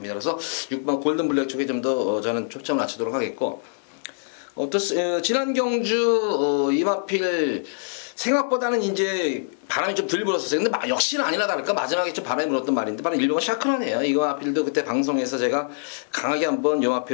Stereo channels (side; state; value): right; silent; digital silence